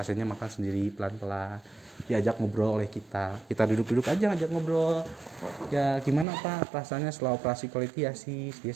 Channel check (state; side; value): drops out; left; at 6.2 s